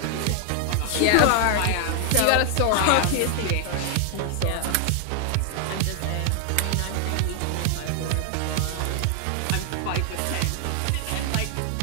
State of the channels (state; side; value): different; both; correlation 0.00